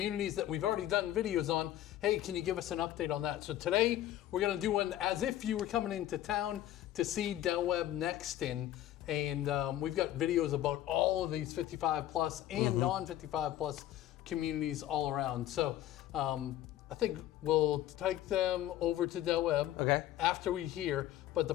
that we've already done videos on. Hey, can you give us an update on that? So today we're going to do one as if you were coming into town to see Del Webb Nexton. And we've got videos about all of these 55 plus and non-55 plus communities all around. So I think we'll take them over to Del Webb after we hear. But the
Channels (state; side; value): quieter; right; 13.2 dB